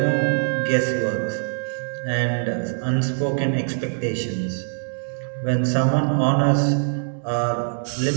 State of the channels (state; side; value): silent; left; digital silence